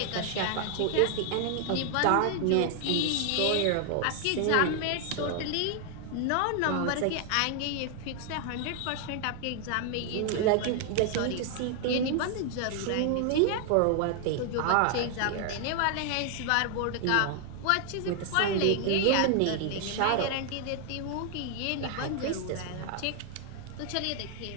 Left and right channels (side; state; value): both; different; correlation 0.00